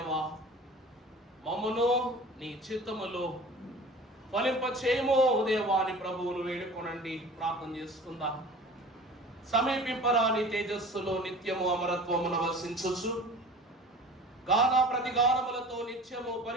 మమ్మను నీ చిత్తములో ఫలింపచేయము ఓ దేవా అని ప్రభువును వేడుకొనండి. ప్రార్థన చేసుకుందాం. సమీపింపరాని తేజస్సులో నిత్యము అమరత్వమును వసించుచు గాన ప్రతిగానములతో నిత్యము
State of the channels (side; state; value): both; normal; correlation 0.42